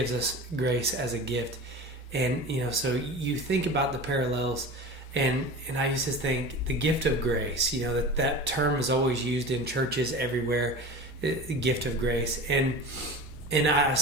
us grace as a gift. And, so you think about the parallels, and I used to think the gift of grace, that term is always used in churches everywhere, the gift of grace. And I was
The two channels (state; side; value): normal; both; correlation 0.33